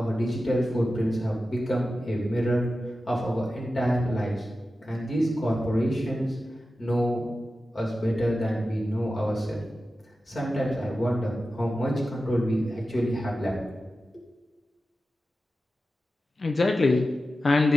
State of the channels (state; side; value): normal; both; correlation 0.93